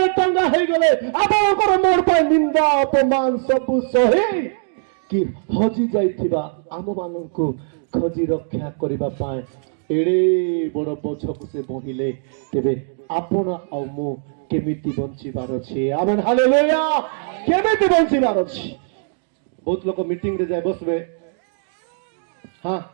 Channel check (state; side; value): silent; left; digital silence